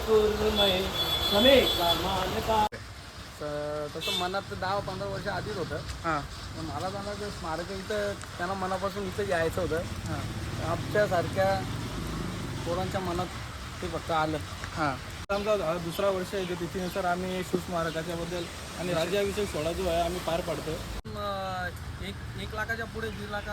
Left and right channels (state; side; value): identical; both; correlation 1.00